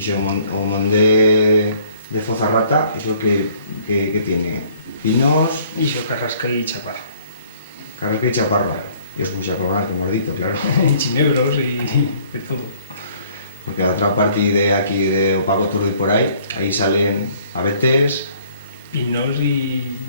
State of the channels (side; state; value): both; inverted; correlation -0.59